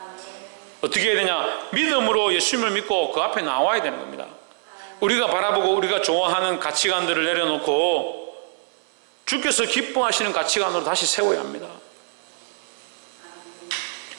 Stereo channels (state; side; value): silent; left; 63 dB below the other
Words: 어떻게 해야 되냐? 믿음으로 예수님을 믿고 그 앞에 나와야 되는 겁니다. 우리가 바라보고 우리가 좋아하는 가치관들을 내려놓고 주께서 기뻐하시는 가치관으로 다시 세워야 합니다.